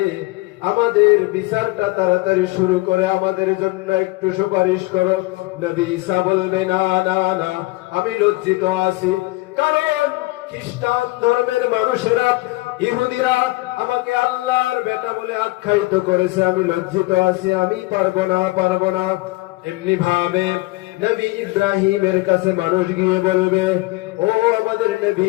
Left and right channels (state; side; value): quieter; right; 21.6 dB